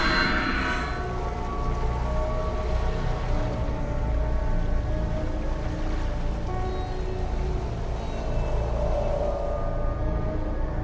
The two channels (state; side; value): identical; both; correlation 1.00